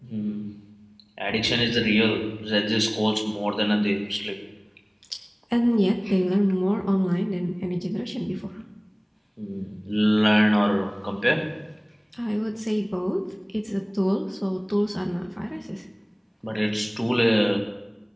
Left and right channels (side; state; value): both; identical; correlation 1.00